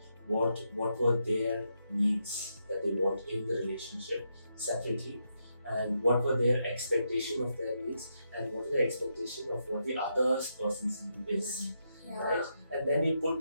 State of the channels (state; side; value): inverted; both; correlation -0.82